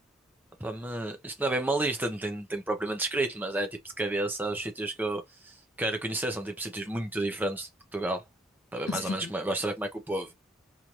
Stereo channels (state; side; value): normal; both; correlation 0.66